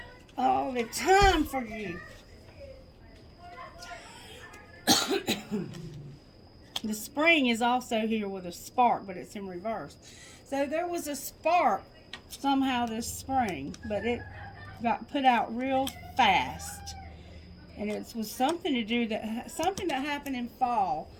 All the time for you. The spring is also here with a spark, but it's in reverse. So there was a spark somehow this spring, but it got put out real fast. And it was something to do that, something that happened in fall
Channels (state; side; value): identical; both; correlation 1.00